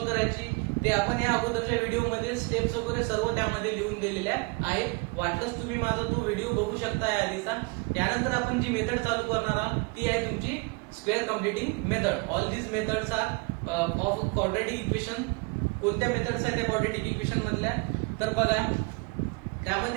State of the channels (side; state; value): left; quieter; 29.8 dB